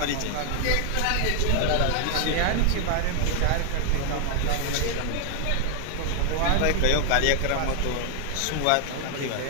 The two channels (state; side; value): different; both; correlation 0.00